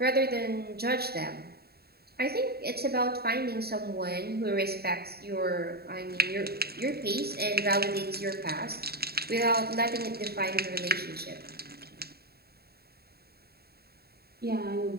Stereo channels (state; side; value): late; left; 0.46 ms